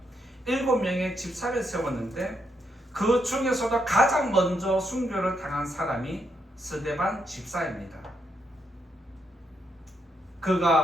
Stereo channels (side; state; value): both; normal; correlation 0.79